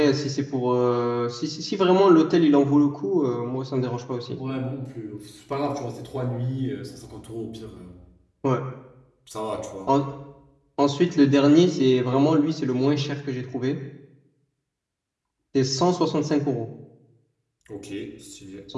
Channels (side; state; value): both; identical; correlation 1.00